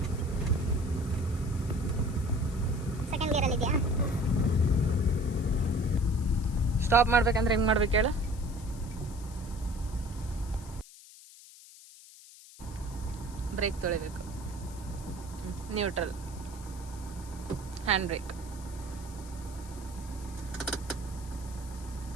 ಸೆಕೆಂಡ್ ಗೇರಲ್ಲಿ ಇದೆಯಾ? ಸ್ಟಾಪ್ ಮಾಡ್ಬೇಕಂದ್ರೆ ಹೆಂಗೆ ಮಾಡ್ಬೇಕು ಹೇಳು? ಬ್ರೇಕ್ ತೊಳಿಬೇಕು, ನ್ಯೂಟ್ರಲ್, ಹ್ಯಾಂಡ್ ಬ್ರೇಕ್,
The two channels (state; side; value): noise; left; hiss, 19 dB below the sound